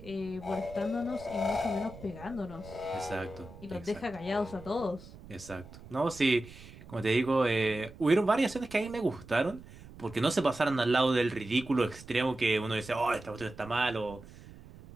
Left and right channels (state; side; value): noise; right; rumble, 18 dB below the sound